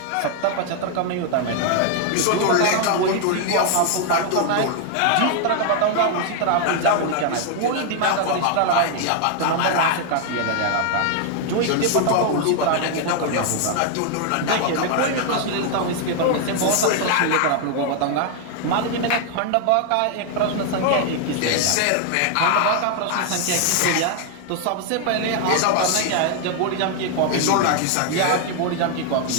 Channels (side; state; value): both; different; correlation 0.00